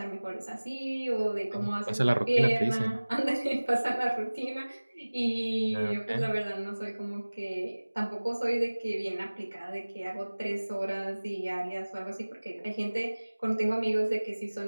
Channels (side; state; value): both; inverted; correlation -1.00